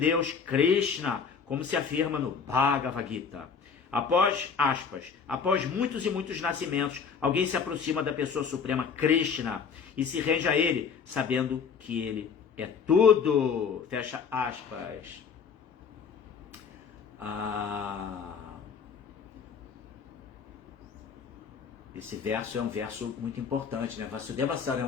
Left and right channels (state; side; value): quieter; right; 6.2 dB